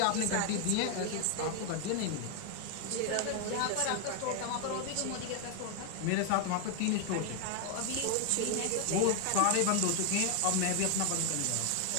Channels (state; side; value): different; both; correlation 0.00